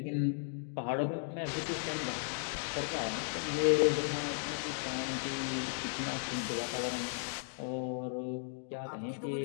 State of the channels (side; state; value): right; silent; digital silence